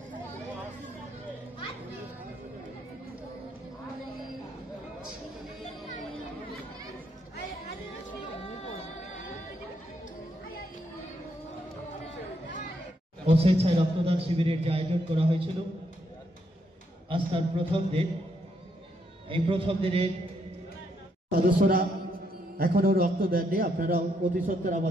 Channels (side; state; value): both; normal; correlation 0.76